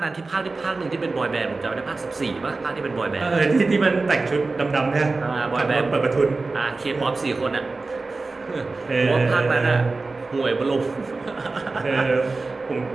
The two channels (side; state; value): left; quieter; 3.6 dB